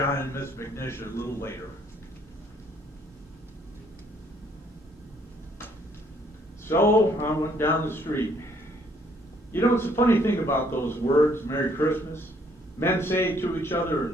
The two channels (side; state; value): both; normal; correlation 0.65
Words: and Miss McNish a little later. So, I went down the street. You know, it's a funny thing about those words, Merry Christmas. Men say it to each other,